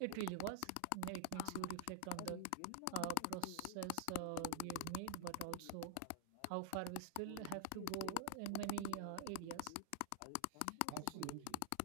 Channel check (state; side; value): different; both; correlation 0.00